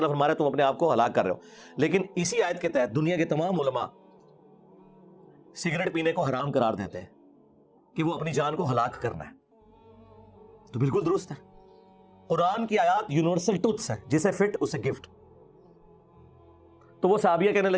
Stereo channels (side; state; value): both; identical; correlation 1.00